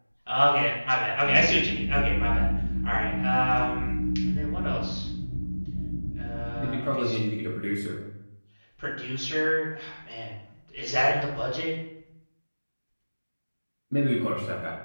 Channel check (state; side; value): inverted; both; correlation -1.00